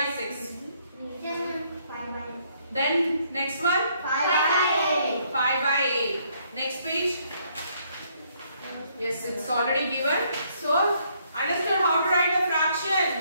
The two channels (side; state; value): both; inverted; correlation -0.69